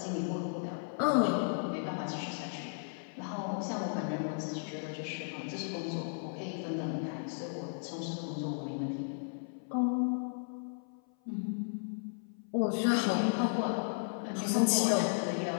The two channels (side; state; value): right; silent; 55 dB below the other